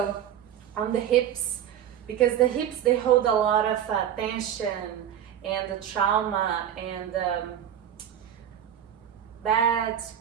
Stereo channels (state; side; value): quieter; left; 10.0 dB